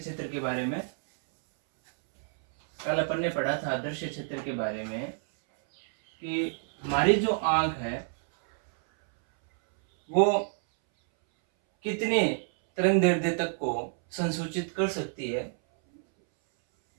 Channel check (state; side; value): silent; left; 59 dB below the other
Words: के बारे में। कल अपन ने पढ़ा था दृश्य क्षेत्र के बारे में कि हमारी जो आँख है वो कितने तरंग दैर्ध्य तक को संसूचित कर सकती है।